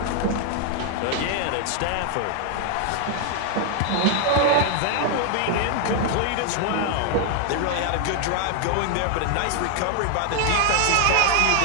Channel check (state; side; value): different; both; correlation 0.00